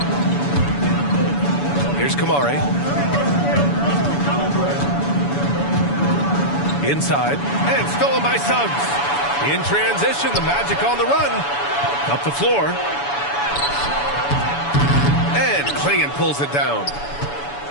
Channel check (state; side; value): late; right; 7.0 ms